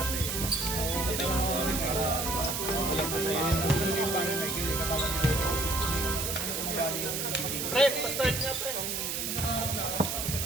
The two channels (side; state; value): right; noise; hiss, 2 dB below the sound